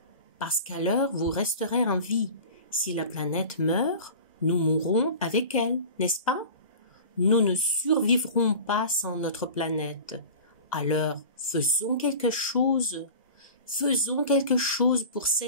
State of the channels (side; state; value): both; inverted; correlation -0.37